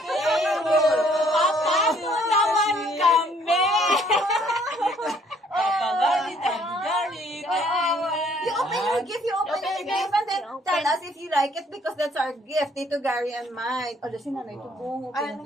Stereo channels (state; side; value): normal; both; correlation 0.63